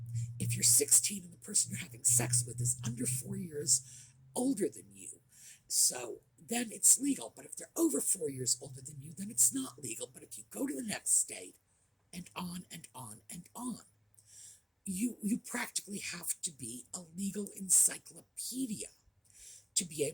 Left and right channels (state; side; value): identical; both; correlation 1.00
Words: if you're 16 and the person you're having sex with is under 4 years older than you, so then it's legal. But if they're over 4 years older than you, then it's not legal. But if you go to the next state, and on and on and on, you practically have to be a legal encyclopedia to be